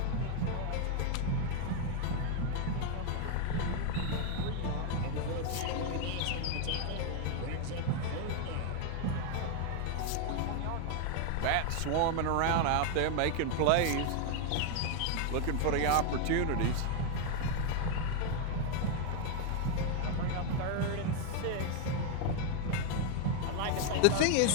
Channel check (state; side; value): different; both; correlation 0.00